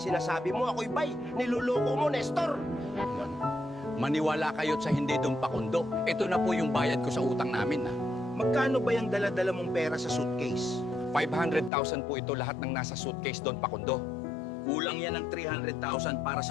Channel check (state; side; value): drops out; right; at 11.7 s